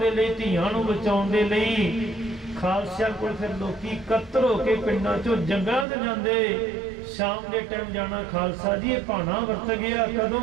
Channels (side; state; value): left; drops out; at 5.9 s